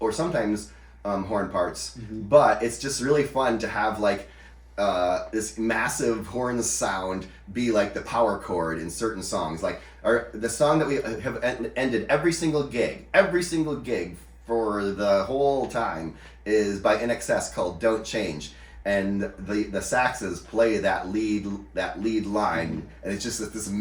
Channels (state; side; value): identical; both; correlation 1.00